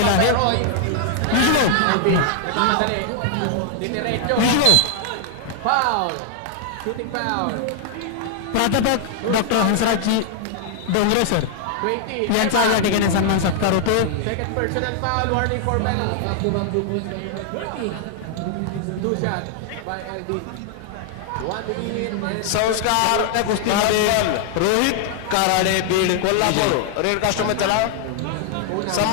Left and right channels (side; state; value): both; different; correlation 0.00